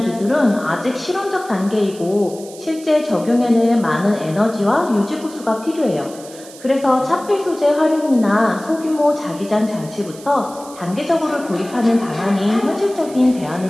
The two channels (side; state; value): right; noise; hiss, 19 dB below the sound